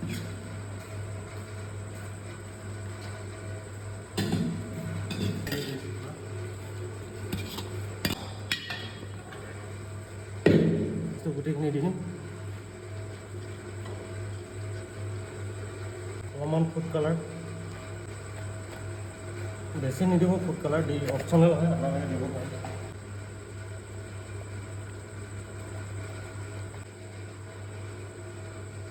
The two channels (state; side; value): identical; both; correlation 1.00